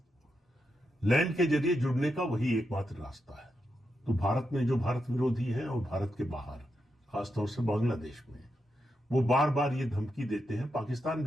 लैंड के जरिए जुड़ने का वही एकमात्र रास्ता है। तो भारत में जो भारत विरोधी है और भारत के बाहर, खासतौर से बांग्लादेश में, वो बार बार ये धमकी देते हैं, पाकिस्तान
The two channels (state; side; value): normal; both; correlation 0.85